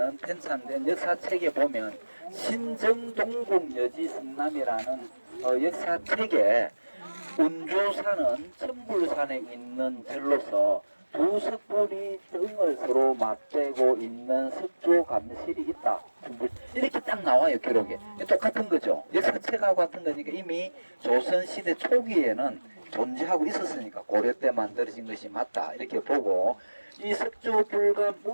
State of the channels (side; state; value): both; inverted; correlation -1.00